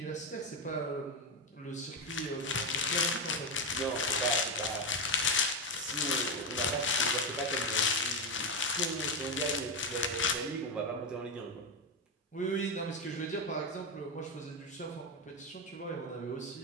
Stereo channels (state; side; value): normal; both; correlation 0.10